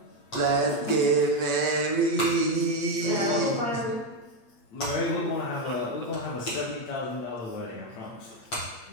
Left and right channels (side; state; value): right; late; 8.6 ms